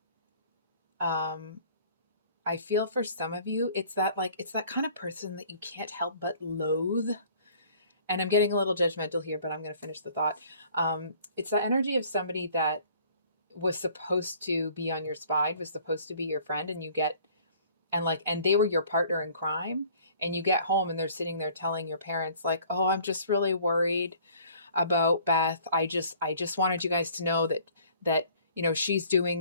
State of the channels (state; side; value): inverted; both; correlation -0.54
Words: I feel for some of you, it's that kind of person that you can't help but loathe. And I'm getting a little judgmental here, but I'm going to finish the thought. It's that energy of somebody that was supposed to be on your side, was supposed to be your friend, and they were your partner in crime. And you get home and they're sitting there telling your parents like, "Oh, I'm just really worried about Beth. I just wanted you guys to know that she's